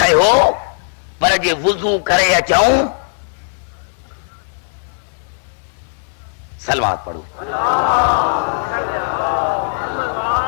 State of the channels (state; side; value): silent; right; digital silence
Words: पर जे वुज़ू करे अचूं। सलवात पढ़ो।